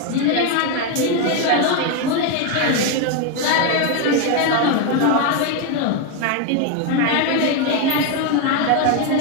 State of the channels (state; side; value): different; both; correlation 0.02